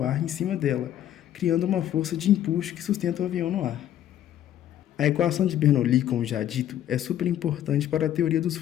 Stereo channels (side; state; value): right; quieter; 11.4 dB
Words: ar em cima dela, criando uma força de empuxo que sustenta o avião no ar. A equação de Bernoulli, como já dito, é super importante para a teoria dos